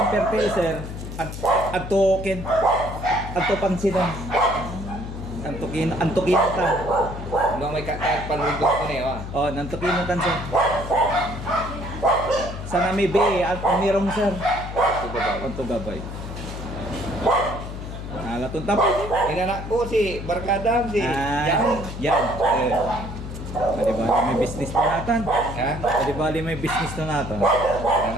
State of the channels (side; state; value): left; noise; hum, 8 dB below the sound